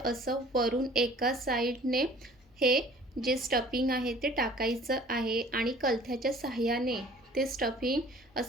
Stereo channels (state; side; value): normal; both; correlation 0.50